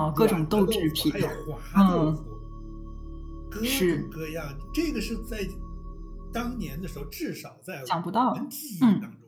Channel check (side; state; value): both; identical; correlation 1.00